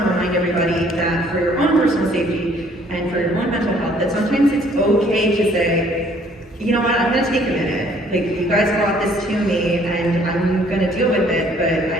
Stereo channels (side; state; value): both; normal; correlation 0.60